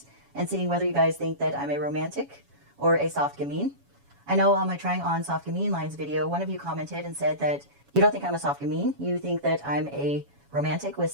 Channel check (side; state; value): left; late; 7.1 ms